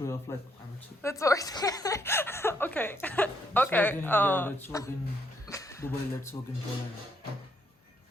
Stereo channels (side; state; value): both; normal; correlation 0.73